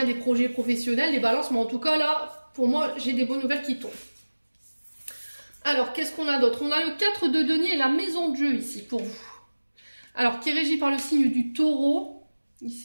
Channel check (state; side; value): inverted; both; correlation -1.00